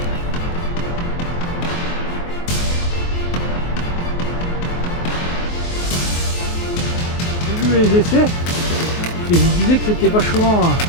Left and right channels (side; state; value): right; late; 23 ms